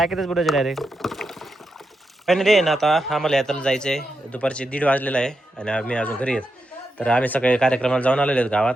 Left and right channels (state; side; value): normal; both; correlation 0.86